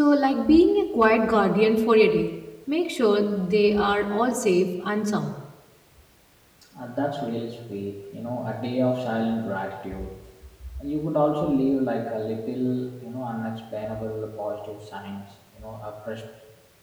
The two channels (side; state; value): both; identical; correlation 1.00